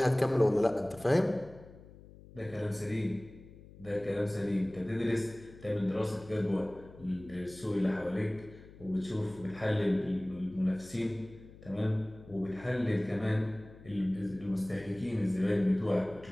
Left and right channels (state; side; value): noise; left; hum, 20 dB below the sound